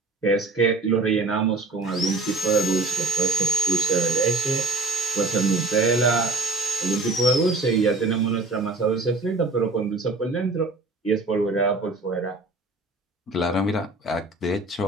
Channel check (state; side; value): quieter; left; 3.3 dB